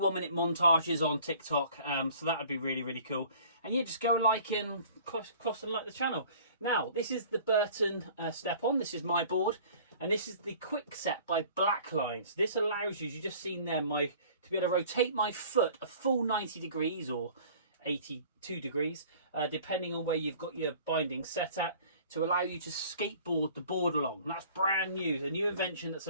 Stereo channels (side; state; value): both; inverted; correlation -0.49